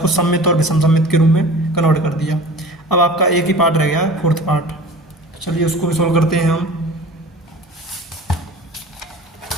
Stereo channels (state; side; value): normal; both; correlation 0.40